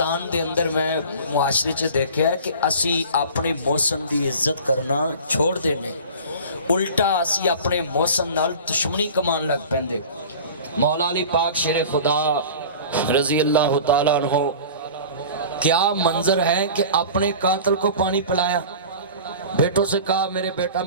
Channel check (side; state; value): both; inverted; correlation -0.39